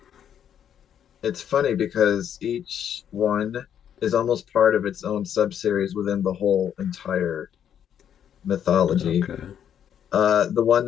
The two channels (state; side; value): quieter; right; 9.2 dB